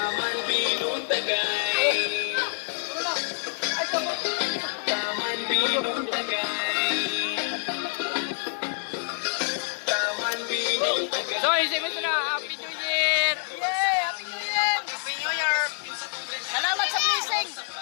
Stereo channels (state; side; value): silent; right; digital silence